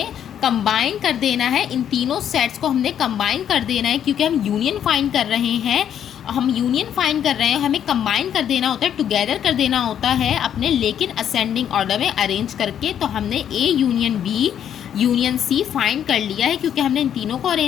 कंबाइन कर देना है, इन तीनों सेट्स को हमने कंबाइन कर देना है, क्योंकि हम यूनियन फाइंड कर रहे हैं। हम यूनियन फाइंड कर रहे हैं, हमें कंबाइन कर देना होता है, टुगेदर कर देना होता है अपने, लेकिन असेंडिंग ऑर्डर में अरेंज करके। तो हमने A union B union C find कर लिया है, क्योंकि हमने इन तीनों को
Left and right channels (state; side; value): quieter; right; 9.5 dB